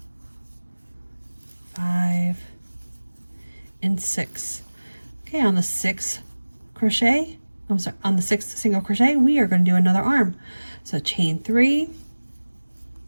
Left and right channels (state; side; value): inverted; both; correlation -1.00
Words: 5, and 6. Okay, on the 6th crochet, I'm sorry, on the 6th single crochet, we are going to do another arm. So chain 3,